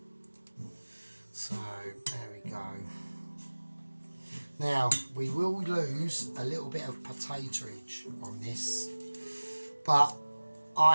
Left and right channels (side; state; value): both; inverted; correlation -1.00